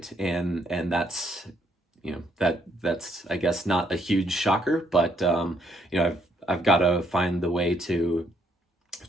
and that's that's I guess not a huge shocker, but I've got to find the way to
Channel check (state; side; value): normal; both; correlation 0.71